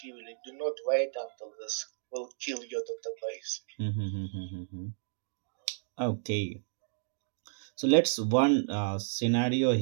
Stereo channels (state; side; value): silent; left; digital silence